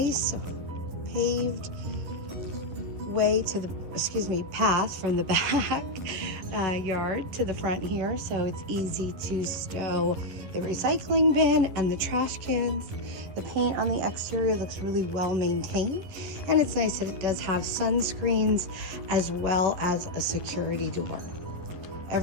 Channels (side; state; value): left; late; 11 ms